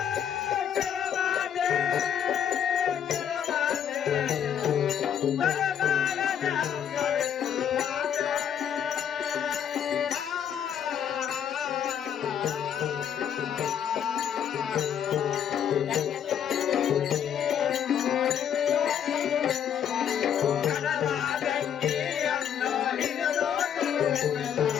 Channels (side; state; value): right; quieter; 8.9 dB